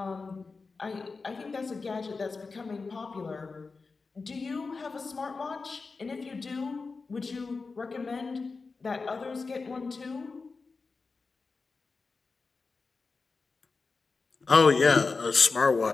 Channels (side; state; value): right; quieter; 4.3 dB